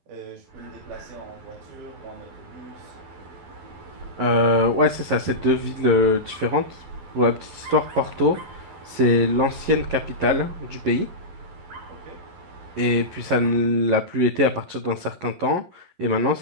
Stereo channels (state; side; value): late; left; 11 ms